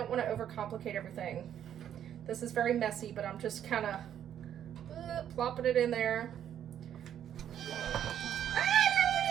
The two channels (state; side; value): quieter; left; 10.0 dB